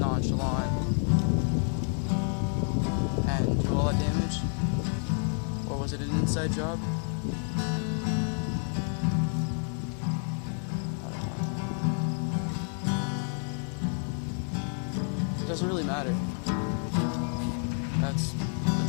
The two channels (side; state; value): right; silent; 58 dB below the other